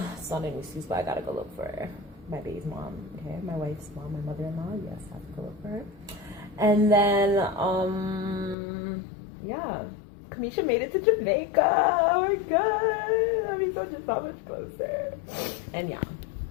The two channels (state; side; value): drops out; right; at 8.6 s